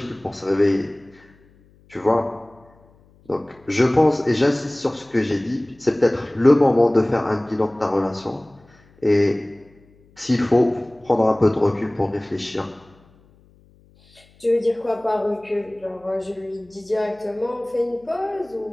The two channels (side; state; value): left; noise; hum, 30 dB below the sound